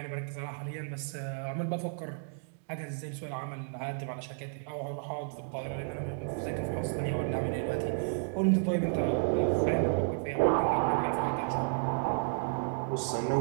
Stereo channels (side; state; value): left; silent; digital silence